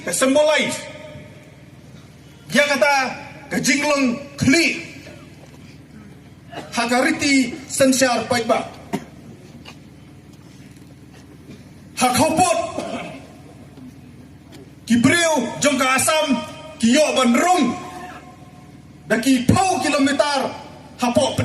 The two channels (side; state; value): both; identical; correlation 1.00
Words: ka symbolize ya kata ka jinglong kli hakariti sensyar pagba hakopot kibreu jong ka asam kiyo bandrung daki pau kilometer hapo